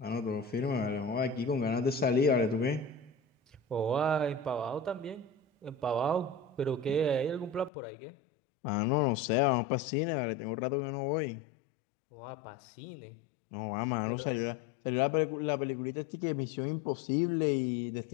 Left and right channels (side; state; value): right; drops out; at 7.7 s